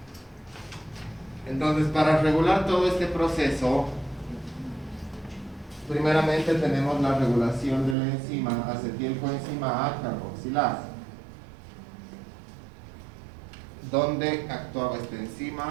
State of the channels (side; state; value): left; drops out; at 8.0 s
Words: Entonces, para regular todo este proceso, primeramente tenemos la regulación de la enzima acetilcoenzima A carboxilasa. ¿Dónde actuaba esta